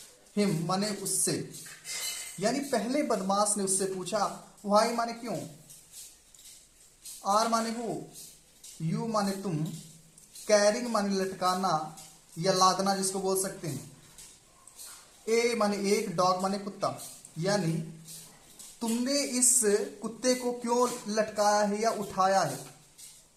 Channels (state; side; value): identical; both; correlation 1.00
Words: हिम माने उससे, यानी पहले बदमाश ने उससे पूछा। व्हाई माने क्यों, आर माने वो, यू माने तुम, कैरिंग माने लटकाना या लादना जिसको बोल सकते हैं, ए माने एक, डॉग माने कुत्ता, यानी तुमने इस कुत्ते को क्यों लटकाया है या उठाया है।